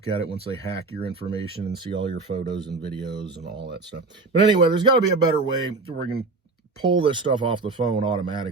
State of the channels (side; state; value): left; quieter; 3.8 dB